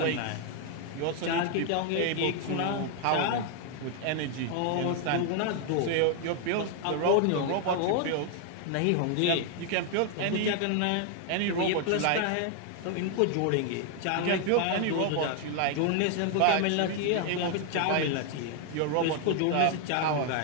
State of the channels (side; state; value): both; different; correlation 0.00